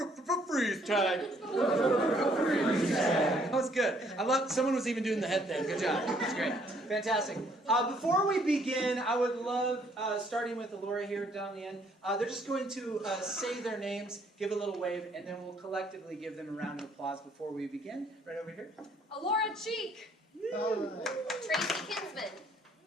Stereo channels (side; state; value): both; normal; correlation 0.65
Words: Tag. Freeze Tag. That was good. I love, someone was even doing the head thing. Good job. That's great. Fantastic. Before we begin, I would love, starting with Alora here down the end, they're just going to say their names, give a little wave, and then we'll collectively give them a round of applause before we begin. Right over here. Alora Cheek. Tracy Kinsman.